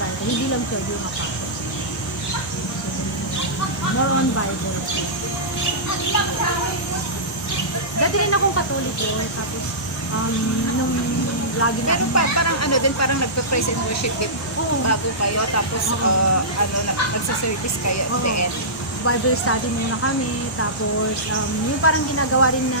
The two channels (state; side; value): normal; both; correlation -0.17